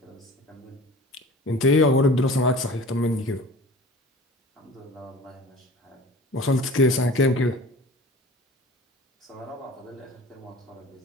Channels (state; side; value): normal; both; correlation 0.41